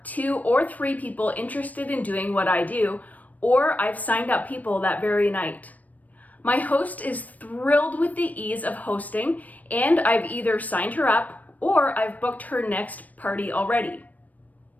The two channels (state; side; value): late; right; 0.075 ms